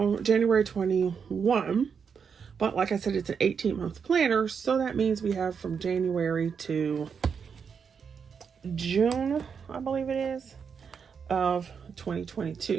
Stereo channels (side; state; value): left; quieter; 6.4 dB